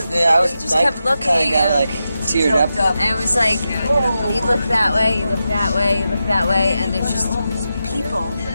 just kept looking. Kind of got like teared up. And it was like, you look that way, you look that way, you look that way, and there's just people.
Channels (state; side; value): inverted; both; correlation -0.89